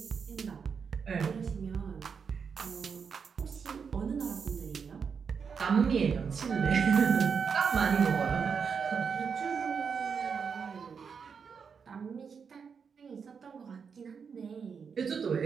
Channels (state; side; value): quieter; left; 6.2 dB